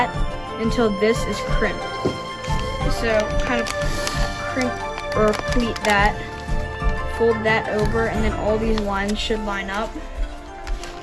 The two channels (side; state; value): both; identical; correlation 1.00